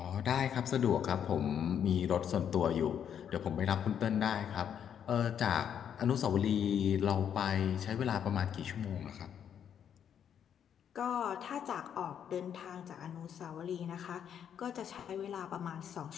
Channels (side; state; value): right; quieter; 8.7 dB